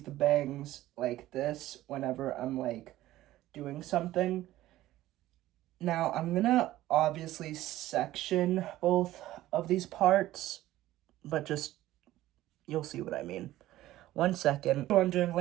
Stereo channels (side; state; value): left; quieter; 15.3 dB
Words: the bangs like this whenever I'm, like, doing something. Now, I'm gonna obviously section both of these parts, but just, you'll see what I mean. 1 second. You're wondering,